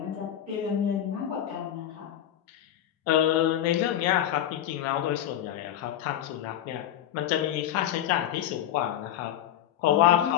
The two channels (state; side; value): quieter; right; 11.4 dB